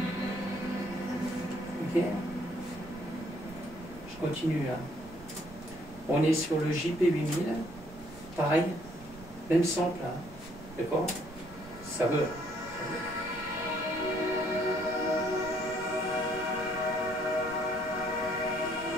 Ok? Je continue, hein. On est sur le JP8000. Pareil, même sample, hein. D'accord? Ça veut.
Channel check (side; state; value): right; noise; rumble, 18 dB below the sound